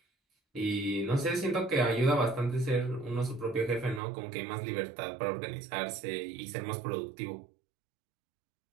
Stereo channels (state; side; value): drops out; left; at 4.0 s